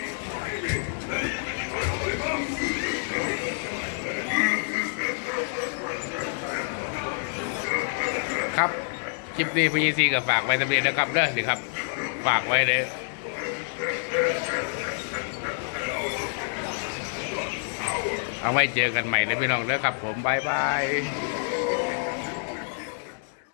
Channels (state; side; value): silent; right; digital silence